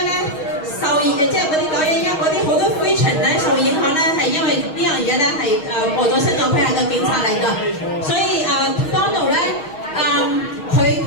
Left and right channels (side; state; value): right; late; 6.3 ms